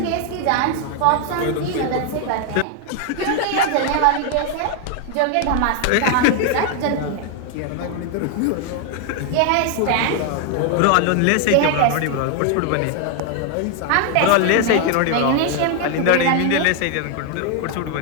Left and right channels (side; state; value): both; different; correlation 0.00